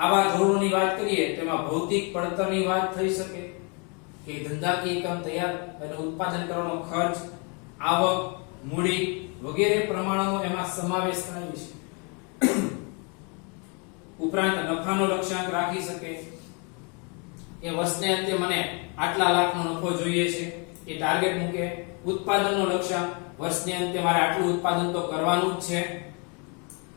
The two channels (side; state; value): right; quieter; 34.4 dB